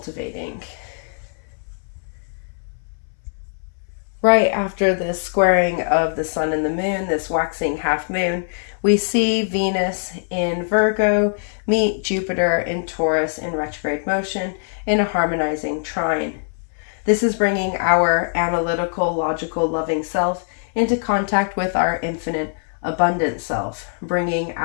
Right after this squaring of the sun and the moon, this waxing half moon, we see Venus in Virgo meet Jupiter in Taurus in retrograde motion in a harmonizing trine. This is bringing our analytical, logical, loving self into contact with our infinite, abundant self, bringing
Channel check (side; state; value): right; silent; 64 dB below the other